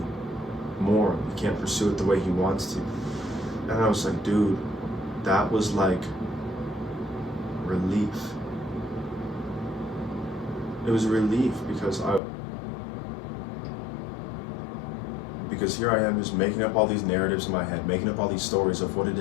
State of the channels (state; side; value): drops out; right; at 12.2 s